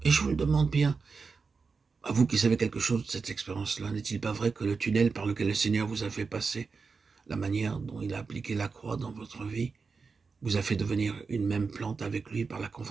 Et je vous le demande bien, à vous qui savez quelque chose de cette expérience-là, n'est-il pas vrai que le tunnel par lequel le Seigneur vous a fait passer, la manière dont il a appliqué la croix dans votre vie, vous a fait devenir une même plante avec lui par la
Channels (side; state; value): left; quieter; 4.9 dB